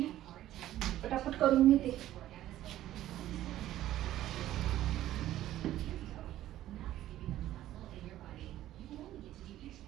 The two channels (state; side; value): quieter; left; 13.6 dB